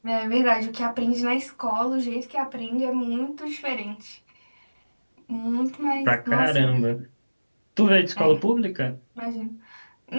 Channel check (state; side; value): inverted; both; correlation -1.00